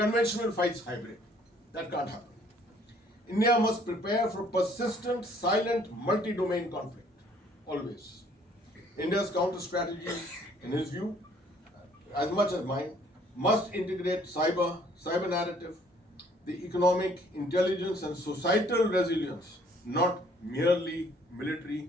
fights hybrid. That can't happen. India must prepare for persistent, silent, multi-domain conflict. Always. India's counter strategy, in his view, as much as mine, must integrate cyber narrative, the economic, intelligence and societal resilience, not merely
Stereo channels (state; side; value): normal; both; correlation 0.60